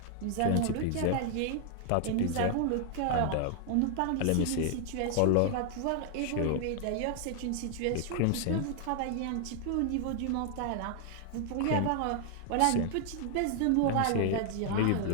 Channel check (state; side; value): different; both; correlation 0.00